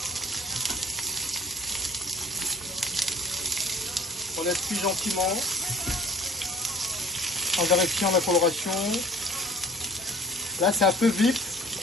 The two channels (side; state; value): both; normal; correlation 0.49